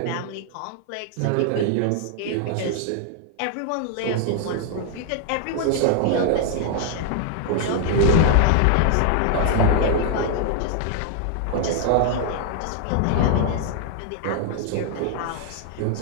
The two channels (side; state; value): both; different; correlation -0.01